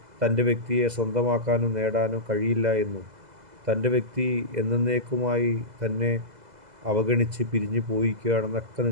തൻ്റെ വ്യക്തിയെ സ്വന്തമാക്കാനോ നേടാനോ കഴിയില്ല എന്നും തൻ്റെ വ്യക്തി എന്നേക്കുമായി തന്നെ അവഗണിച്ച് പിരിഞ്ഞു പോയിരിക്കുകയാണെന്നൊക്കെ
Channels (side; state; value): left; late; 2.0 ms